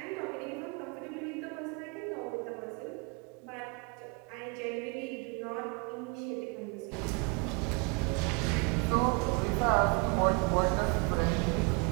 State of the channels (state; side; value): quieter; left; 31.8 dB